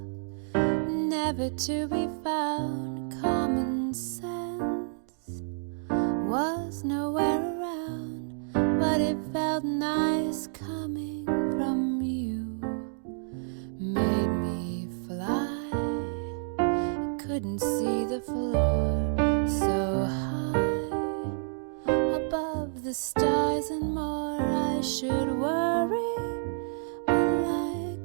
never to be found. Common sense was nowhere around, but it felt nice coming from you. Made me fly, I couldn't see the floor, so high above the stars and more. I should worry, but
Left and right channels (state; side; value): silent; left; digital silence